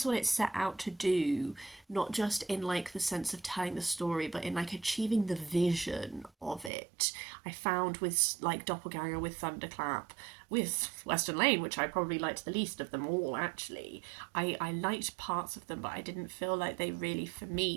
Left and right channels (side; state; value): left; drops out; at 6.7 s